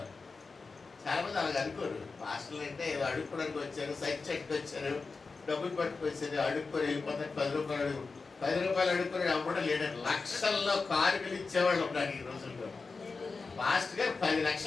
చాలా మంది అలాగ అనుకోరు. పాస్టర్లు అంటే ఏదో అడుక్కోవడానికి వచ్చారు, సైట్ చెట్టుకు వచ్చారు, డబ్బులు పట్టుకొచ్చారు, అడుక్కొని వెళ్ళిపోతారు. 10 రూపాయలు అడుక్కొని అమ్మడం లేదండి. లక్షల్లో కానుకలు ఇచ్చేవాళ్ళు ఉన్నారు ఈ రోజుల్లో. పాస్టర్ గారు 10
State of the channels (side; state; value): right; quieter; 4.3 dB